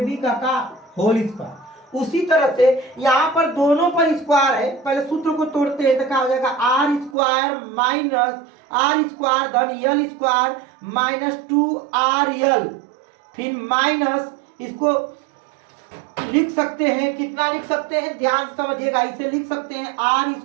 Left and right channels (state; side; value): drops out; left; at 7.2 s